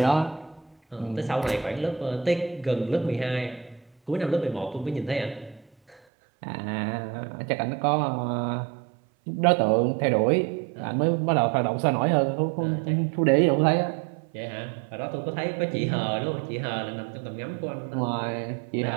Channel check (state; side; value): drops out; left; at 6.0 s